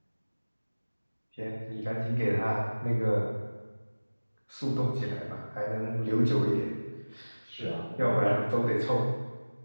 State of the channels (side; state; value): both; inverted; correlation -1.00